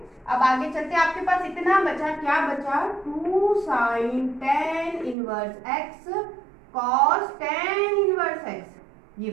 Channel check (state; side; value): drops out; left; at 5.2 s